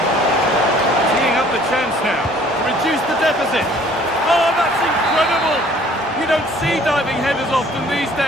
Teeing up the chance now. Reduce the deficit. Oh, that's incredible! You don't see diving headers often these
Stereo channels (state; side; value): normal; both; correlation 0.55